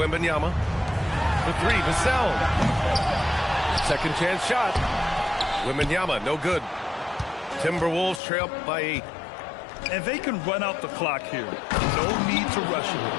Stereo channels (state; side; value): drops out; right; at 8.2 s